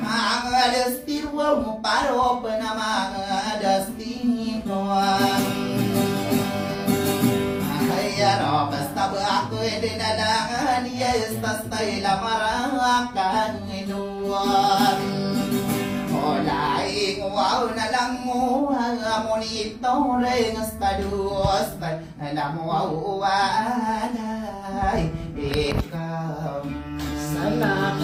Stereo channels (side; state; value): both; identical; correlation 1.00